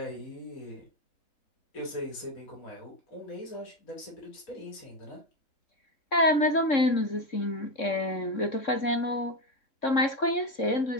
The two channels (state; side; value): late; right; 3.6 ms